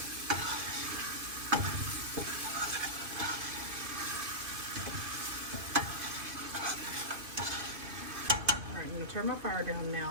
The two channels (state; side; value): late; left; 2.5 ms